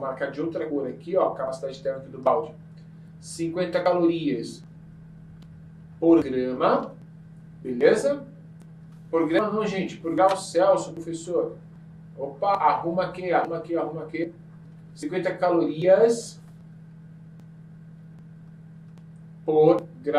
de outra cor aqui, ó, a capacidade térmica do balde. 50 calorias por grama. Beleza? Por grama não, gente. Por grau Celsius, professor. Opa, arruma aqui. 50 calorias por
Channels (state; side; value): identical; both; correlation 1.00